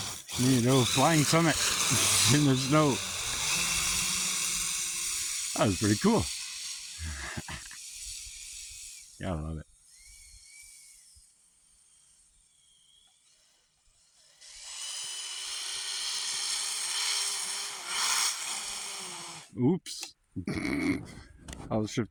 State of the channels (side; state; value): both; identical; correlation 1.00